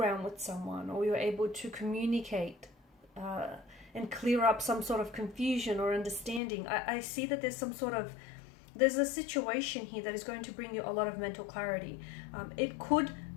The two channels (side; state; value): right; drops out; at 6.4 s